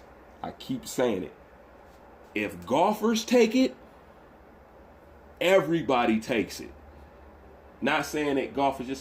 I keep saying it. If golfers take it, everybody takes it. Not saying that golf is just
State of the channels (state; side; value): identical; both; correlation 1.00